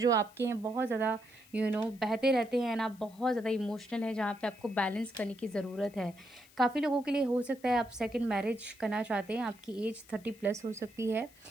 आपके हैं बहुत ज़्यादा बहते रहते हैं, एंड आप बहुत ज़्यादा इमोशनल हैं, जहाँ पे आपको बैलेंस करने की ज़रूरत है। काफ़ी लोगों के लिए हो सकता है आप सेकंड मैरिज करना चाहते हैं, आपकी एज 30+ हो सकती है।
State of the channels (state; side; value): noise; left; hiss, 26 dB below the sound